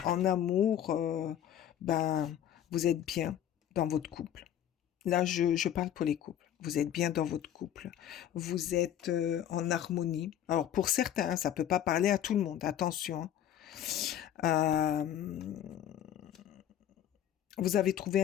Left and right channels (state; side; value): quieter; right; 10.7 dB